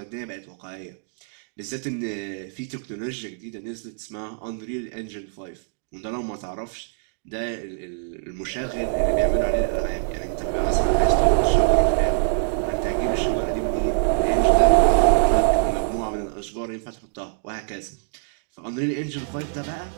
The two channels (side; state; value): left; silent; 63 dB below the other